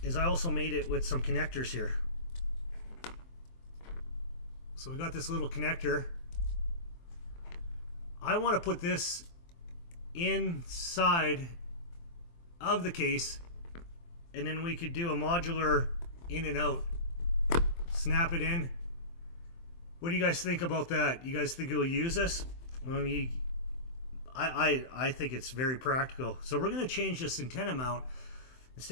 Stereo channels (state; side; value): late; right; 23 ms